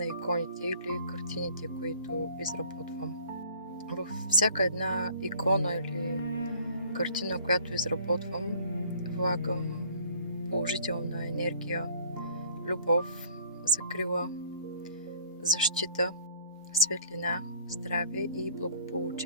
иконите или картините, които изработвам. Във всяка една икона или картина, която изработвам, влагам положителна енергия, любов, закрила, защита, светлина, здраве и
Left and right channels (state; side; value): inverted; both; correlation -0.54